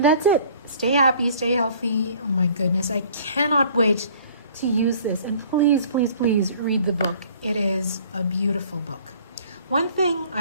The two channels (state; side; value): inverted; both; correlation -0.52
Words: that's it. Stay happy, stay healthy. Oh my goodness, I cannot wait to use this. And please, please, please read the book. It is a beautiful book. One thing